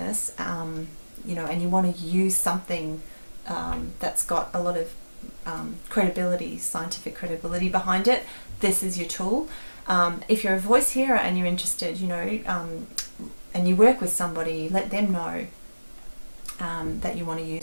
and you want to use something that's got a lot of credibility, scientific credibility behind it, this is your tool. If you're a voice hearer and you're interested, and you work with somebody, let them know that you want to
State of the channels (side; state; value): both; inverted; correlation -1.00